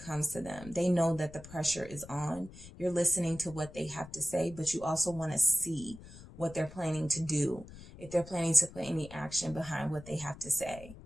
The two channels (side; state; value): left; noise; rumble, 17 dB below the sound